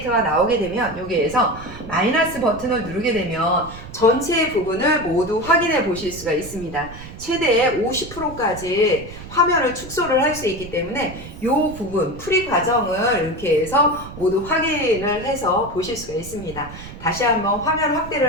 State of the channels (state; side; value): noise; right; rumble, 14 dB below the sound